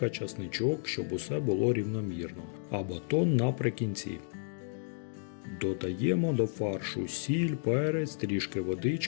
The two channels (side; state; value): right; silent; digital silence